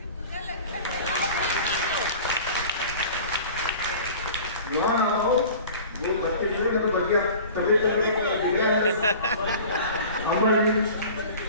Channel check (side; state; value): both; inverted; correlation -0.41